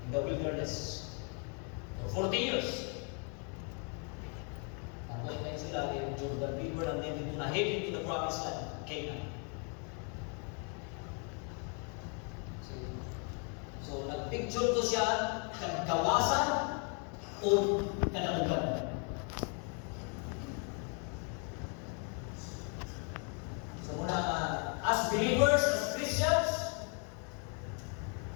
in the wilderness, for 40 years, naglayin sila in Jordan River and then dito na heading to the promised land, Canaan. So, nagpicture to siya ng kawasan o kadaugan. So, muna, as believers, as Christians,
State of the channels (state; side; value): quieter; right; 38.7 dB